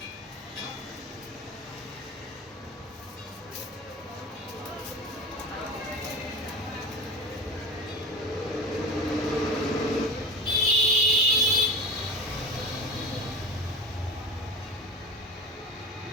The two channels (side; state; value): both; normal; correlation 0.32